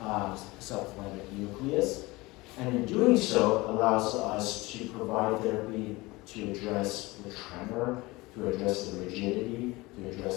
subthalamic nucleus, and in doing so allows us to provide therapy to address the tremor, to address the rigidity, to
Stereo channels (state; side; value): quieter; right; 21.9 dB